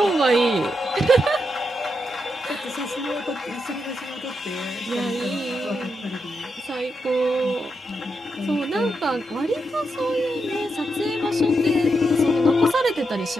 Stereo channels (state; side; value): normal; both; correlation 0.84